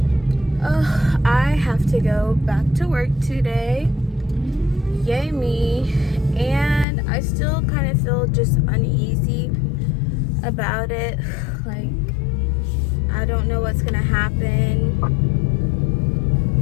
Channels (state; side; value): drops out; right; at 6.9 s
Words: I have to go back to work today, yay me, and I still kind of feel just uneasy about it. Like, I don't know what's gonna happen.